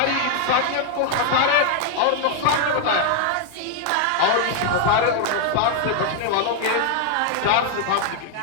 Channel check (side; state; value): both; different; correlation 0.00